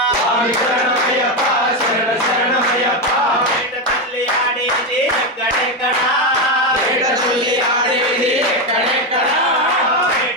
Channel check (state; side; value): normal; both; correlation 0.10